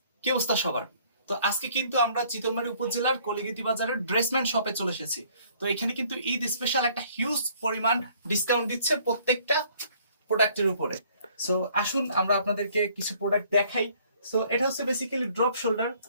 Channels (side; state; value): both; inverted; correlation -0.60